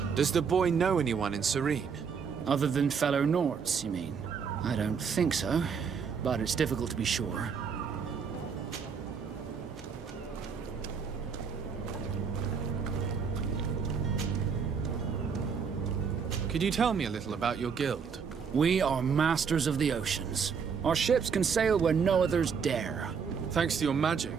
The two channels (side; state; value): left; quieter; 6.2 dB